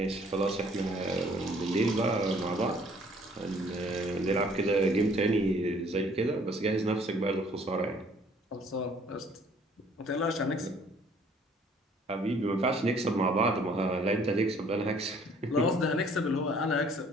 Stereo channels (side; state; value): both; normal; correlation 0.58